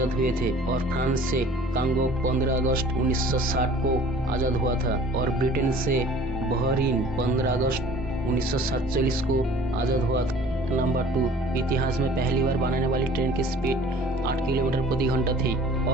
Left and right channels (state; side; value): normal; both; correlation 0.49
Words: हुए थे, और फ्रांस से कांगो 15 अगस्त 1960 को आजाद हुआ था, और ब्रिटेन से बहरीन 15 अगस्त 1947 को आजाद हुआ था। नंबर 2। इतिहास में पहली बार बनाने वाली ट्रेन की स्पीड 8 किलोमीटर प्रति घंटा थी,